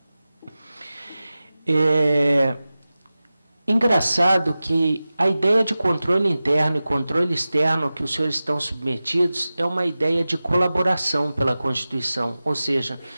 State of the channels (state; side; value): inverted; both; correlation -0.96